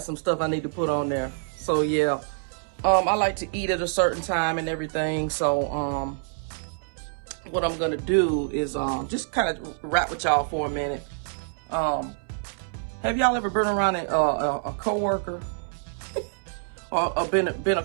some stuff I need to put on there. So yeah, I like to eat at a certain time and everything. So what I'm gonna do is just kind of rap with y'all for a minute. Have y'all ever been around a coworker or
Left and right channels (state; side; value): silent; left; 61 dB below the other